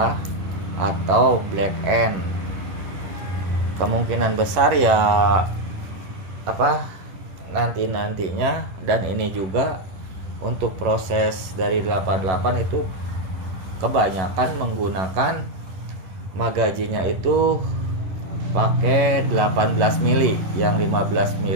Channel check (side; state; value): left; late; 11 ms